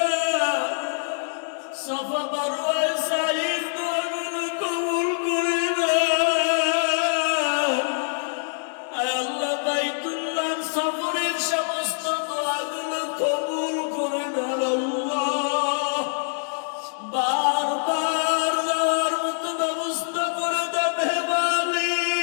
সাফা মারওয়ায় সাঈর দোয়াগুলো কবুল করে দেন। আল্লাহ বাইতুল্লাহর সফরের সমস্ত দোয়াগুলো কবুল করে দেন। আল্লাহ বারবার যাওয়ার মতো ব্যবস্থা করে দেন হে মালিক।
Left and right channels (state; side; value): silent; right; digital silence